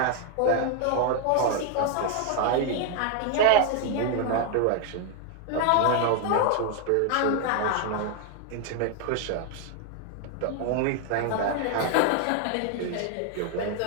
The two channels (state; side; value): different; both; correlation 0.00